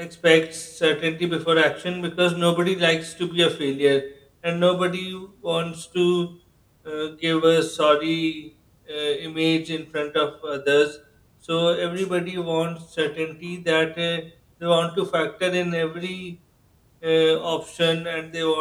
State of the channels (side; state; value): both; identical; correlation 1.00